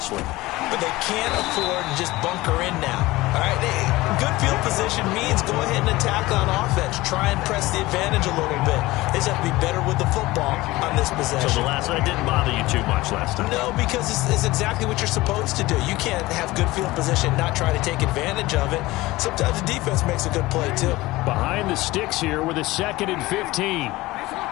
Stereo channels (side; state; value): right; quieter; 19.4 dB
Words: But they can't afford to just bunker in now. All right, good field position means go ahead and attack on offense. Try and press the advantage a little bit. They just have to be better with the football on this possession. So the last one didn't bother you too much last time? No, because it's exactly what you're supposed to do. You can't have good field position, not try to take advantage of it. Sometimes the defense makes a good play, too. Behind the sticks here with a 2nd and 15.